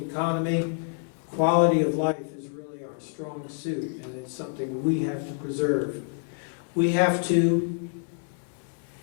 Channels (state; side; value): silent; right; 60 dB below the other